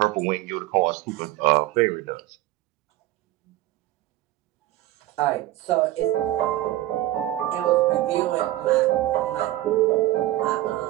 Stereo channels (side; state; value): left; quieter; 15.7 dB